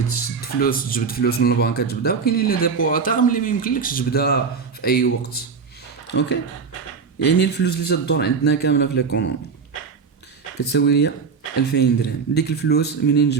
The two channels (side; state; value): left; quieter; 5.5 dB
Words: تشد فلوس تجبد فلوس من البنك تجبدها، وكاينين لي ديبو تاغ اللي ما يمكنلكش تجبدها في اي وقت. اوكي، يعني الفلوس اللي تدور عندنا كامله في ليكونومي كتساوي ليا 2000 درهم. ديك الفلوس منين